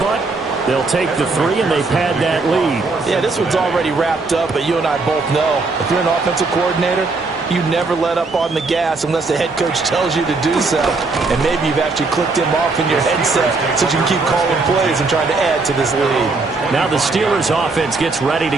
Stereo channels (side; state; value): left; quieter; 3.8 dB